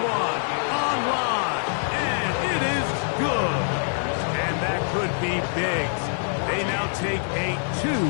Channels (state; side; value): silent; right; digital silence